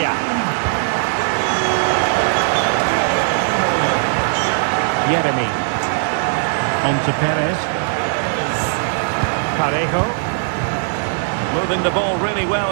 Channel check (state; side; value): silent; left; 67 dB below the other